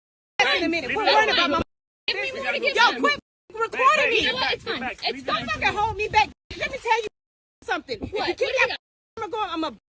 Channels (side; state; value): both; identical; correlation 1.00